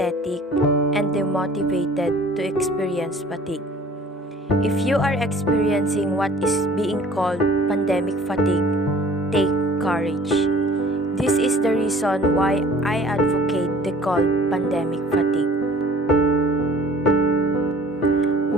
and demotivated to experience fatigue. If you are experiencing what is being called pandemic fatigue, take courage. This is the reason why I advocate the called pandemic fatigue.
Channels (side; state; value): both; normal; correlation 0.50